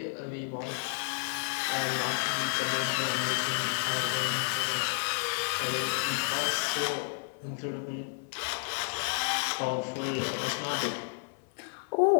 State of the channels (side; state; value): right; silent; 57 dB below the other